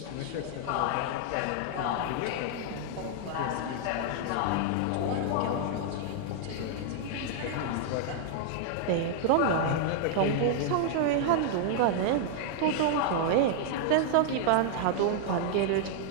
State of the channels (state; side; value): different; both; correlation -0.01